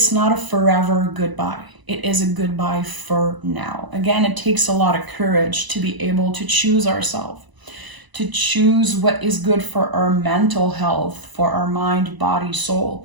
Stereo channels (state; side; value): late; left; 1.0 ms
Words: not a forever goodbye. It is a goodbye for now. Again, it takes a lot of courage to be able to choose ourselves, to choose what is good for our mental health, for our mind, body,